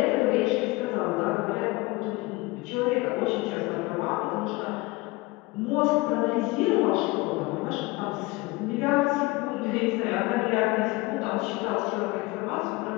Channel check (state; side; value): quieter; right; 22.9 dB